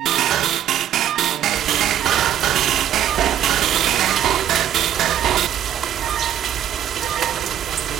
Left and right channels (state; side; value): quieter; left; 10.6 dB